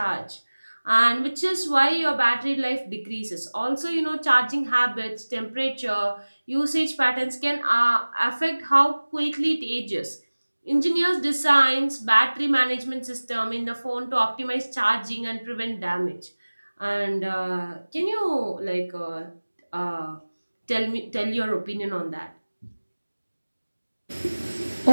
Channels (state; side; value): inverted; both; correlation -1.00